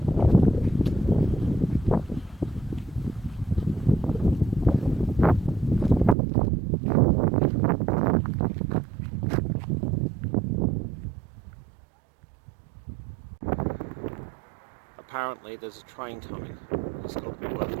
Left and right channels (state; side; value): drops out; left; at 6.2 s